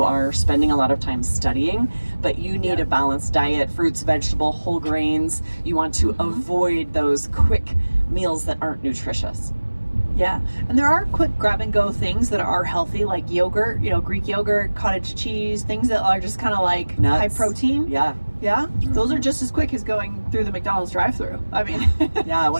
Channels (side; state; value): both; inverted; correlation -1.00